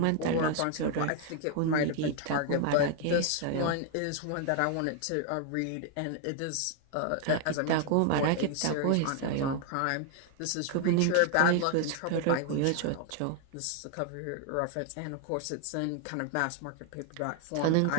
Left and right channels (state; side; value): different; both; correlation 0.00